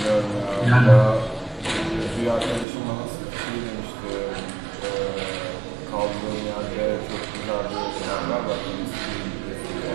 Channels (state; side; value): drops out; left; at 2.7 s